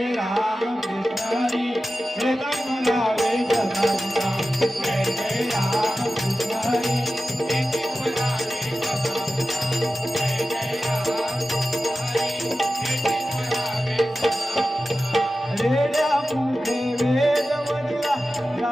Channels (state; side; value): normal; both; correlation 0.94